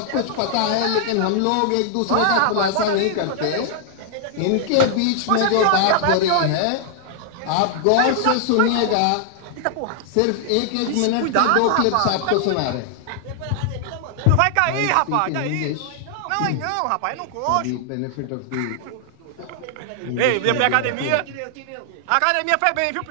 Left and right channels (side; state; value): both; different; correlation -0.01